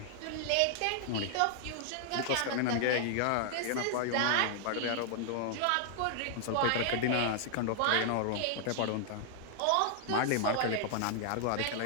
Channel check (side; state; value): both; different; correlation -0.01